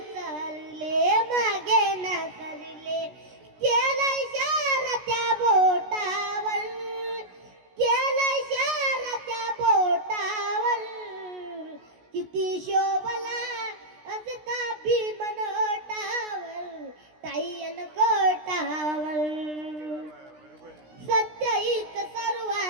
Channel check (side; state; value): left; late; 16 ms